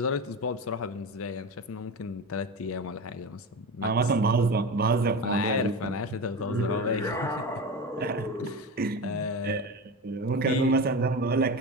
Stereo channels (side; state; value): both; normal; correlation 0.25